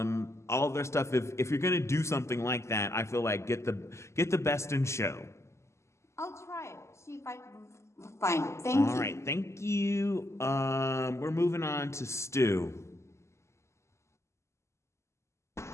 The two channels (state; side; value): late; right; 0.13 ms